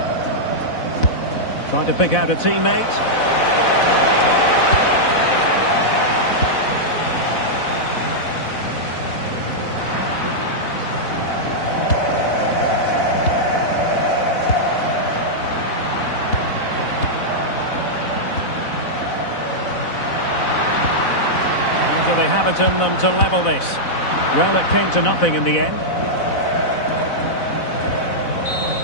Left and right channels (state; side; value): late; right; 4.0 ms